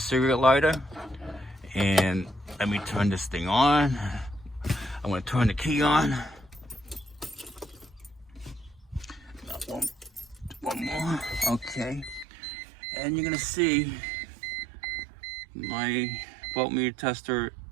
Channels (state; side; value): drops out; left; at 12.2 s